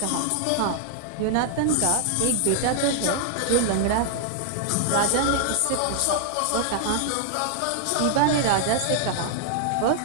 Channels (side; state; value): both; different; correlation 0.00